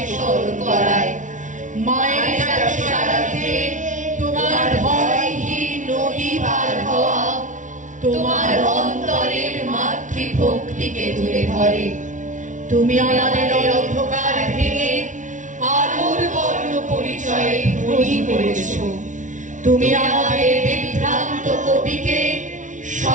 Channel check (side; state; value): left; late; 0.37 ms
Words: স্মরণ করায়। মায়ের সারাতে তোমার ভয়হীন নদী পার হওয়া তোমার অন্তরের মাতৃভক্তিকে তুলে ধরে। তুমি আমাদের অন্ধকার ভেঙে আলোর বর্ণ পরিচয়ে ধনী করেছ। তুমি আমাদের বিভ্রান্ত কবিকে